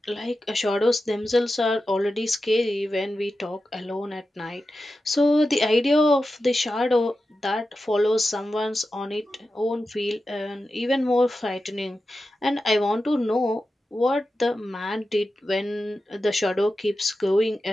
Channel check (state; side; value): normal; both; correlation 0.92